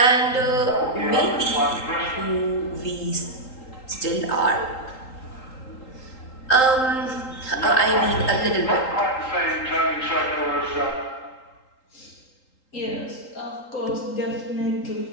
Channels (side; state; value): right; late; 3.8 ms